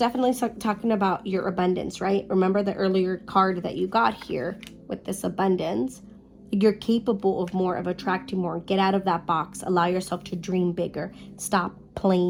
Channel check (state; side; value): identical; both; correlation 1.00